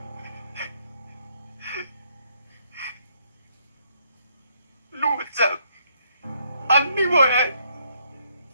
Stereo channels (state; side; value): inverted; both; correlation -0.71